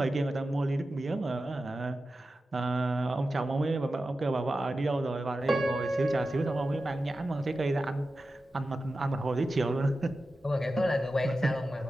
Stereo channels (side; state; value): both; normal; correlation 0.93